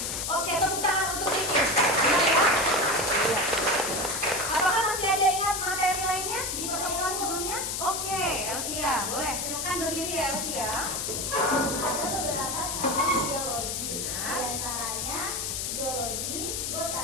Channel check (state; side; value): noise; left; hiss, 2 dB below the sound